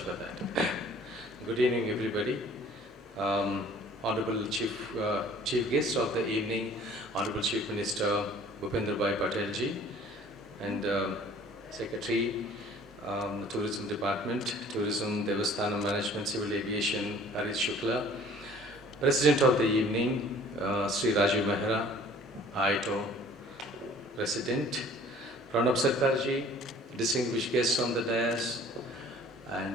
that. Good evening, everybody. Honorable Chief Guest of the evening, Honorable Chief Minister Bhupendra Patel ji, and Secretary, Tourism Department, Tourism, Devasthana Management, Civil Aviation, Hareet Shukla, President of the evening, Shri Rajiv Mehra, IATO President, Pranab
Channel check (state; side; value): normal; both; correlation 0.52